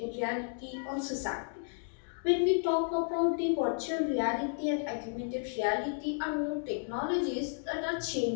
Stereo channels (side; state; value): right; silent; digital silence